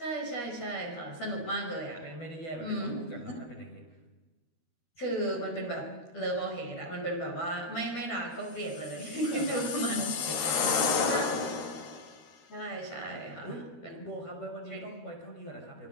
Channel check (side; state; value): right; late; 13 ms